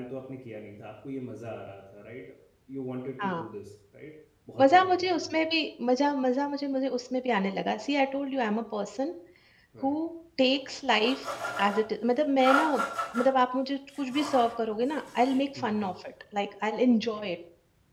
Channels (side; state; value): both; identical; correlation 1.00